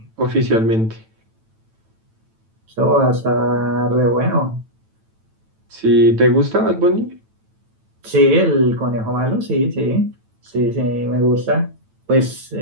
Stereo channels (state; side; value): late; left; 9.0 ms